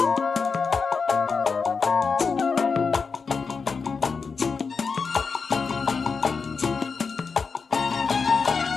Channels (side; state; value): right; quieter; 5.1 dB